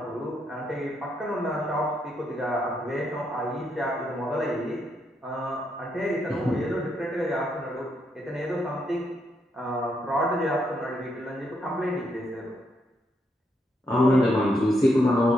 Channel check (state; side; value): normal; both; correlation 0.78